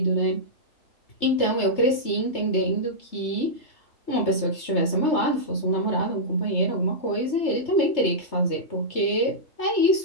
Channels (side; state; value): right; late; 3.3 ms